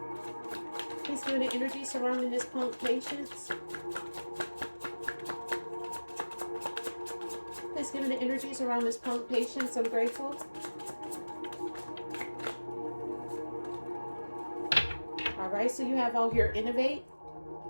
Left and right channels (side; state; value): both; inverted; correlation -1.00